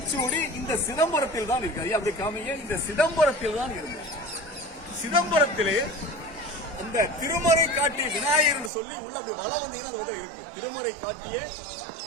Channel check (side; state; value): left; drops out; at 8.7 s